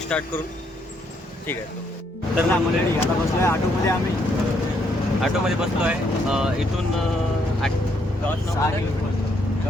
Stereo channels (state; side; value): normal; both; correlation 0.73